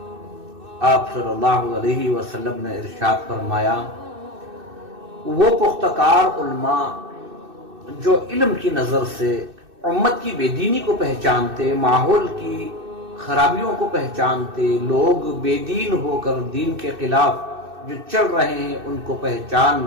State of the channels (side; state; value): left; late; 2.6 ms